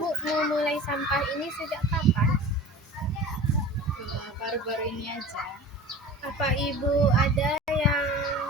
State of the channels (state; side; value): normal; both; correlation 0.38